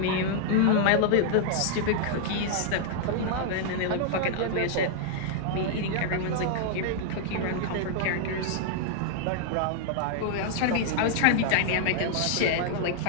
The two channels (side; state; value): both; different; correlation -0.01